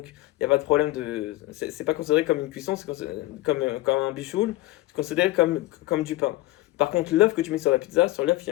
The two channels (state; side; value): quieter; right; 17.7 dB